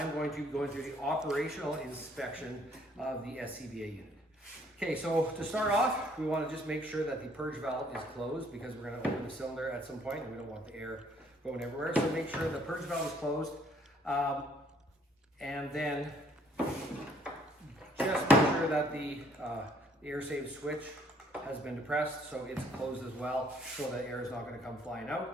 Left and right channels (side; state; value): both; normal; correlation 0.63